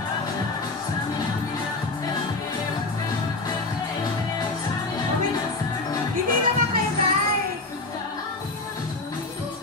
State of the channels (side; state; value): right; quieter; 3.3 dB